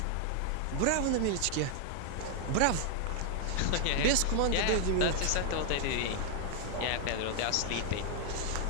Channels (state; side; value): different; both; correlation 0.00